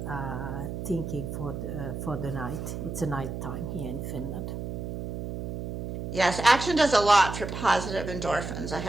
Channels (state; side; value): noise; right; hum, 5 dB below the sound